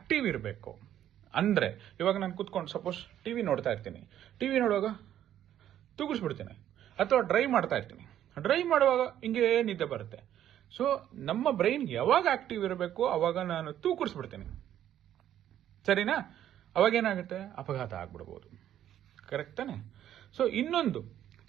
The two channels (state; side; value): quieter; left; 11.2 dB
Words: ಇರಬೇಕು ಅಂದ್ರೆ, ಇವಾಗ ನಾನು ಕುತ್ಕೊಂಡು ಸಪೋಸ್ ಟಿವಿ ನೋಡ್ತಾ ಇರ್ತೀನಿ, ಟಿವಿ ನೋಡುವಾಗ ತೂಗಿಸ್ಬಿಡ್ತೀನಿ, ಅಥವಾ ಡ್ರೈವ್ ಮಾಡ್ತಾ ಇರ್ತೀನಿ, ಡ್ರೈವ್ ಮಾಡುವಾಗ ಹಿಂಗೆ ನಿದ್ದೆ ಬರುತ್ತೆ. ಸೊ ನಮ್ಮ ಬ್ರೈನ್ ಯಾವಾಗ ಆಕ್ಟಿವ್ ಇರಬೇಕು ಅವಾಗ ನಾನು ತೂಕರಿಸ್ಬಿಡ್ತೀನಿ, ಸರಿನಾ? ಅವಾಗ ಏನಾಗುತ್ತೆ, ಅಪಘಾತ ಆಗ್ಬಿಡ್ಬೋದು. ಕರೆಕ್ಟ್ ತಾನೆ? ಸೊ ಇನ್ನೊಂದು